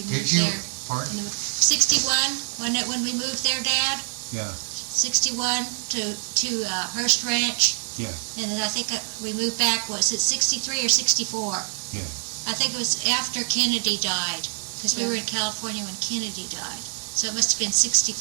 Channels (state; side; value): silent; left; 62 dB below the other